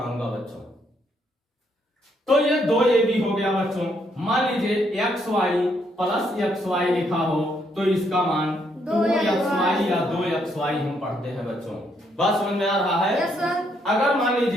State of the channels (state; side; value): normal; both; correlation 0.73